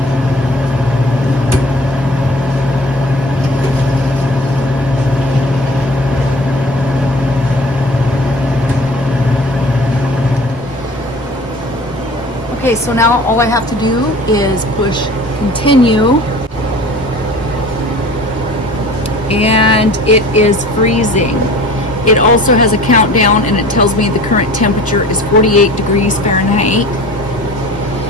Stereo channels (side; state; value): both; normal; correlation 0.44